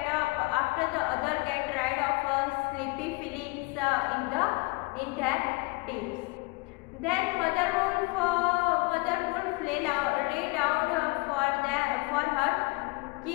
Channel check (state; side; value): quieter; right; 26.5 dB